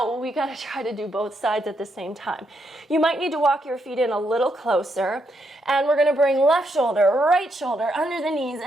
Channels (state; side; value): normal; both; correlation 0.78